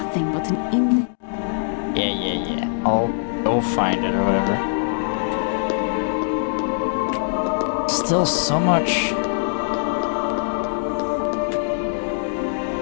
but an Yeah. I'll go find it or whatever. Still so much.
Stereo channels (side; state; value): right; silent; digital silence